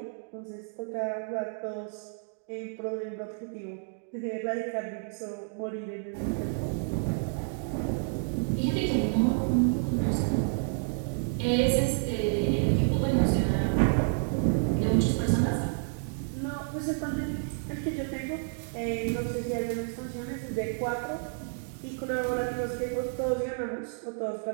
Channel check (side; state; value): left; silent; digital silence